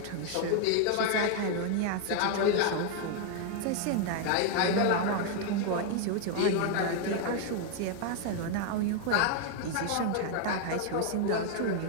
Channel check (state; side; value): different; both; correlation 0.00